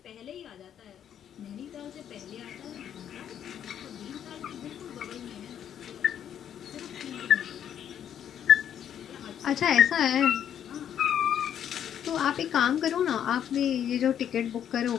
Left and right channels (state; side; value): quieter; right; 9.5 dB